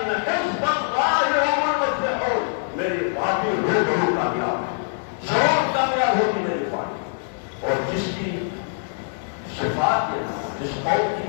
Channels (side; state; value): right; silent; digital silence